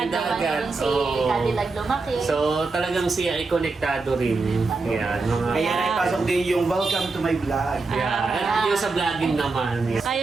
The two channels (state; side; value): quieter; left; 3.9 dB